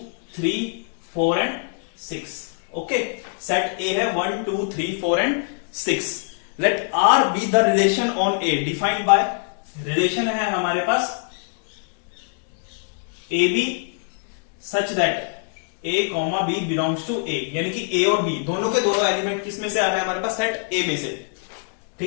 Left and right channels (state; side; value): silent; right; digital silence